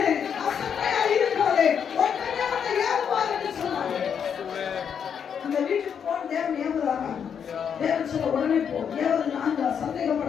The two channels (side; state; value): right; quieter; 7.6 dB